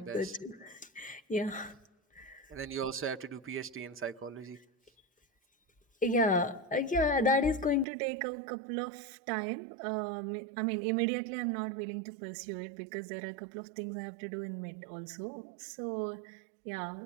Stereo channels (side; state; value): left; drops out; at 7.9 s